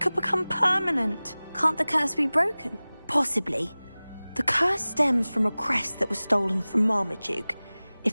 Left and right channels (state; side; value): inverted; both; correlation -0.99